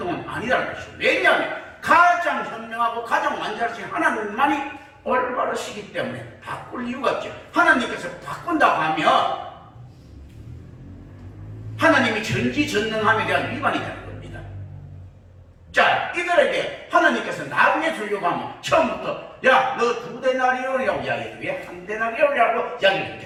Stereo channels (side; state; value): both; identical; correlation 1.00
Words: 아니라는 것이죠. 왜냐하면 가장 현명하고 가장 완전하신 하나님만이 올바르시기 때문에 바꿀 이유가 없죠. 하나님께서 바꾼다고 하면 하나님이 전지전능함에 대한 위반이 되는 겁니다. 자, 이들에게 하나님께서 나중에 주려고 하면 처음부터 야, 너 2데나리온이라고 이야기해도 왜 1데나리온이라고 이야기를